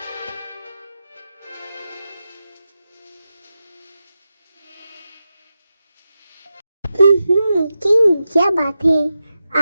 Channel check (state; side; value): inverted; both; correlation -0.91